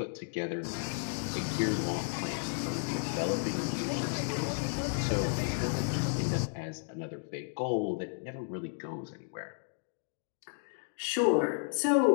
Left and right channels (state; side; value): silent; right; digital silence